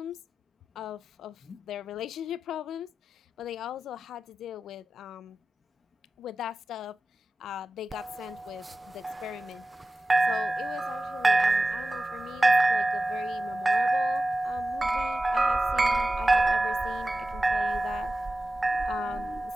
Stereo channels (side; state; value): both; normal; correlation 0.95